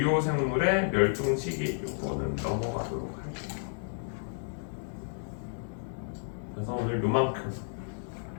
생물의 멸종 시기, 요거는 넘어가도록 할게요. 오늘 요만큼.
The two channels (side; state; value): right; silent; digital silence